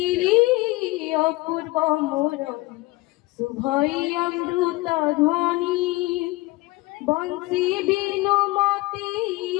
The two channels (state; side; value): quieter; right; 21.1 dB